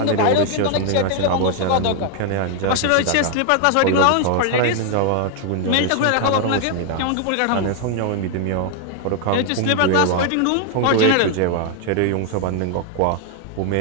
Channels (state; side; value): different; both; correlation 0.00